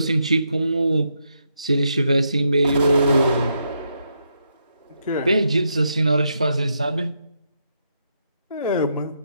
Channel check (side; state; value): both; inverted; correlation -0.80